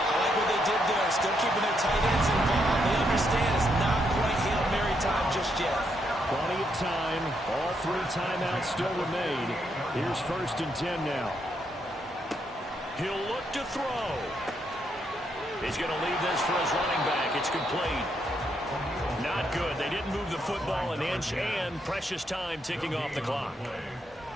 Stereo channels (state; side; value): normal; both; correlation 0.77